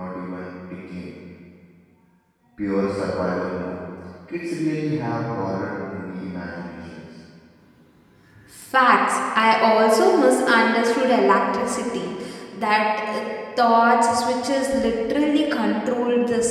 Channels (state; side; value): identical; both; correlation 1.00